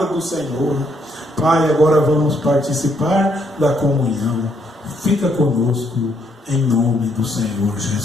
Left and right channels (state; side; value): normal; both; correlation 0.72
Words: do Senhor. Pai, agora vamos participar da comunhão. Fica conosco, em nome do Senhor